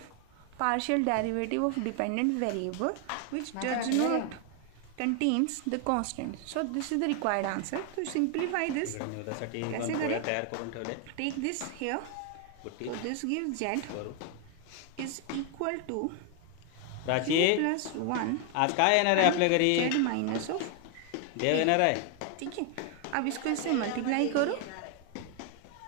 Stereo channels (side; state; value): both; different; correlation 0.00